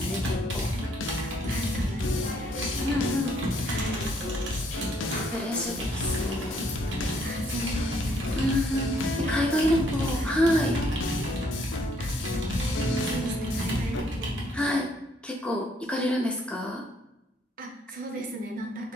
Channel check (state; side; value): normal; both; correlation 0.67